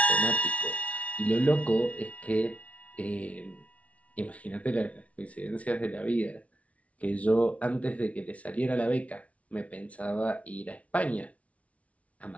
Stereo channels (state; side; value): late; right; 0.065 ms